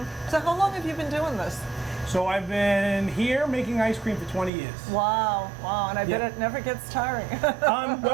So how long have you been doing this? So I've been here making ice cream for 20 years. Wow, wow, and I bet it never gets tiring.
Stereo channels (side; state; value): left; drops out; at 4.5 s